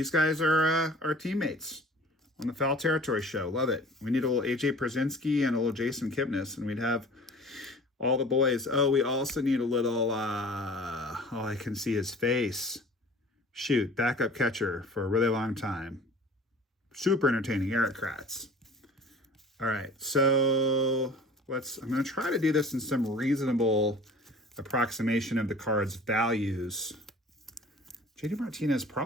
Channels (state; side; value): normal; both; correlation 0.45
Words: guys are our teammates on the Foul Territory show. Love it. We need a little AJ Przinsky and a little Jason Kipnis, and we'd have all the boys. Oh, we also need a little, oh, I can see his face. Shoot, backup catcher for a really long time. Super entertaining, Eric Kratz. All right, so I'm going to try to do this in some reasonable approximation of the card's values. JD Martinez